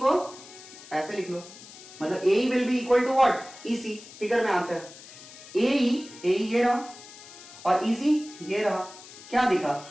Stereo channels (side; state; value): left; noise; hiss, 18 dB below the sound